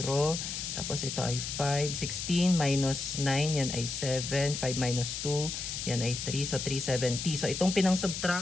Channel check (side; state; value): left; noise; hiss, 5 dB below the sound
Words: Tapos ito ay 5. 16 minus 9, yan ay 7. 5 minus 2, yan ay 3. So, 370. So, itong pinang